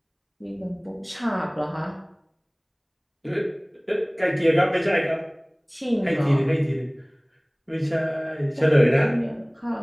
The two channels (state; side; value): identical; both; correlation 1.00